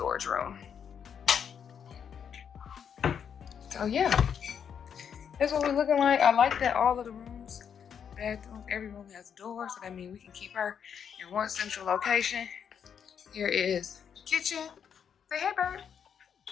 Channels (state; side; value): quieter; right; 7.7 dB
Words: room. So yeah, that's what we're looking like. I like that all of the rooms, bathrooms, every room has a door, so that means we can keep her in one central location. Here is the kitchen. Say hey, bird.